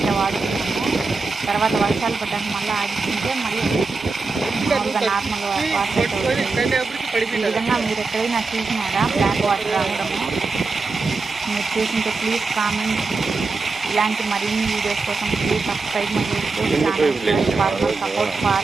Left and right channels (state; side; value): quieter; left; 4.0 dB